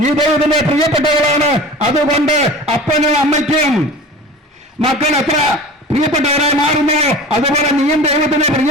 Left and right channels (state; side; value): normal; both; correlation 0.37